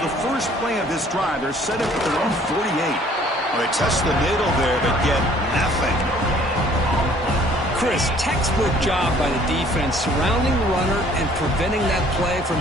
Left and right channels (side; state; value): both; normal; correlation 0.57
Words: the first play of this drive. They're set up at their own 48. Well, they test the middle there, but get nothing. Chris, textbook job by the defense surrounding the runner and preventing that play from